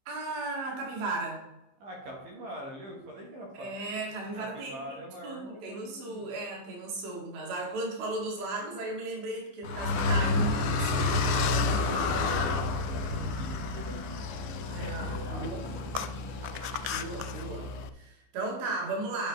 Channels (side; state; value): left; late; 15 ms